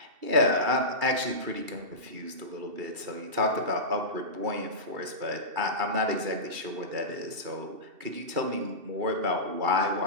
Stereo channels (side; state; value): left; late; 2.7 ms